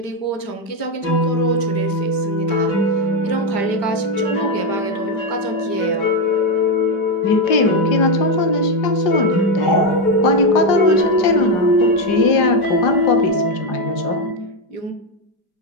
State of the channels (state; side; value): late; right; 5.0 ms